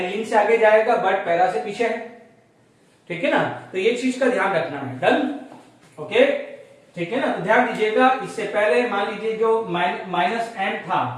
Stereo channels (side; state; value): both; identical; correlation 1.00